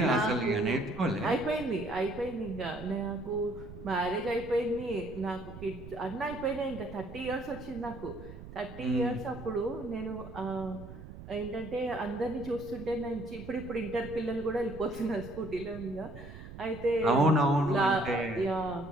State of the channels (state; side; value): noise; right; rumble, 13 dB below the sound